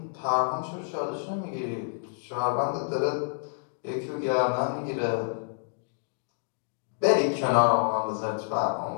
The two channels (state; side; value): silent; right; digital silence